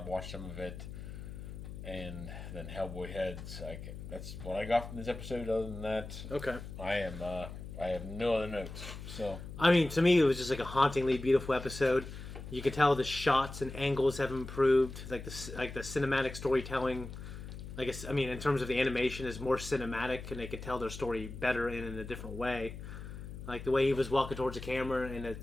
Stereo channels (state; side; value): noise; left; hum, 10 dB below the sound